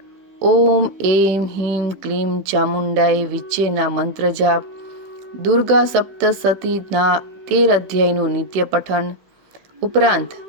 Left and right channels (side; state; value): left; late; 15 ms